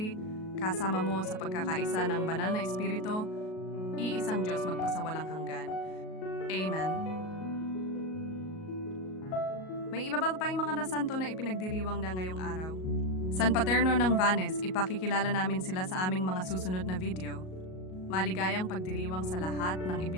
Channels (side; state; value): right; late; 38 ms